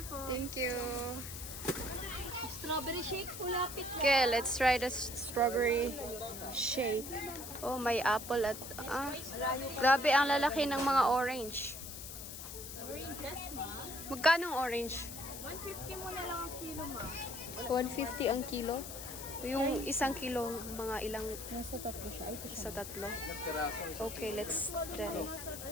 po. Thank you. Strawberry shake po, lapit lang. Okay, let's try the strawberry shake. Oh, may apple at grabe ang lalaki ng mga orange. Oranges, ma. Magkano ang orange? 150 mo na lang ang kilo, ma. 150 ang kilo. Yung isang kilo, mga ilang Nasa tatlo siya. Ito sa tatlo. Okay, let's try.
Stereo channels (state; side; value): noise; left; hiss, 10 dB below the sound